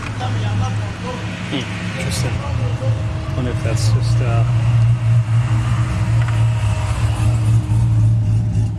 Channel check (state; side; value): identical; both; correlation 1.00